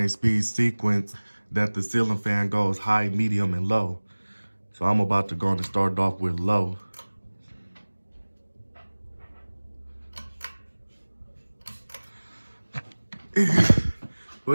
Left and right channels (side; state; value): both; inverted; correlation -1.00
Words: speed sequence that the ceiling fan goes high, medium, and low. So I'm about to go and start off with low.